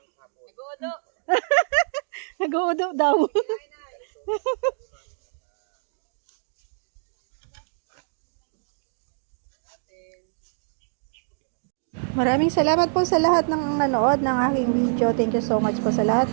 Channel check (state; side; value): silent; left; digital silence